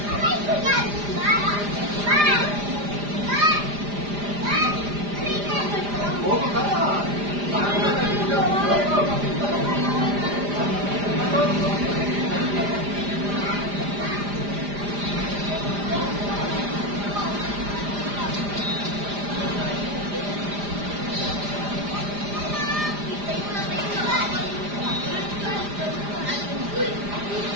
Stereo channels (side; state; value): left; late; 4.9 ms